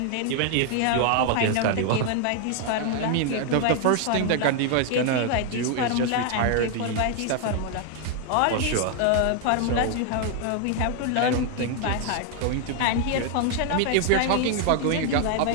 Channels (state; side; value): different; both; correlation 0.00